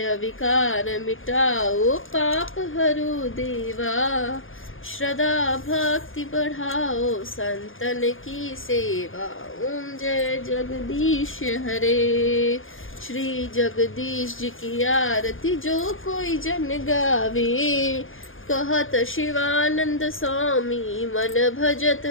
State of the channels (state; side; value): late; right; 0.59 ms